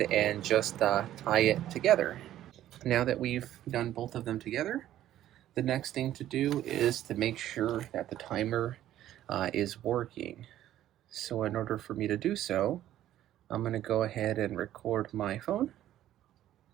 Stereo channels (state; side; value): quieter; left; 12.7 dB